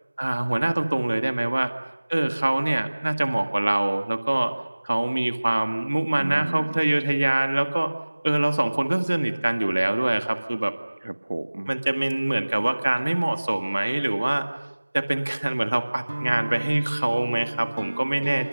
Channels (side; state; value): both; inverted; correlation -1.00